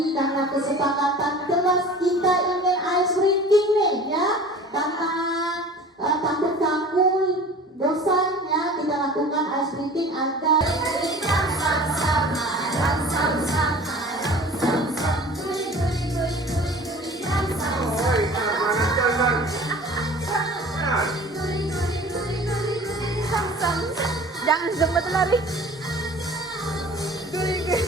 karena kesepakatan kelas kita ingin ice breaking nih, ya. Karena takut kamu bosan, ya, kita lakukan ice breaking agar Jangan sempat lari.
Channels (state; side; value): normal; both; correlation 0.43